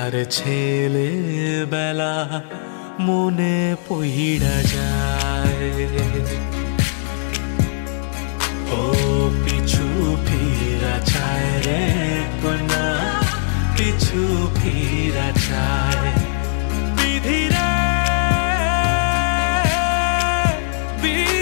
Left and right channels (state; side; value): silent; right; digital silence